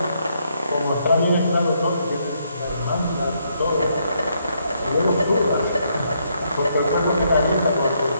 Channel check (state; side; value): inverted; both; correlation -0.74